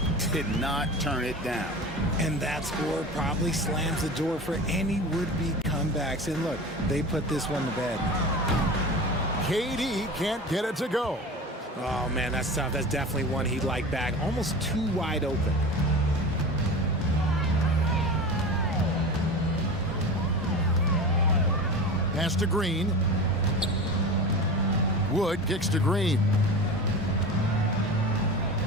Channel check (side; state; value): both; normal; correlation 0.31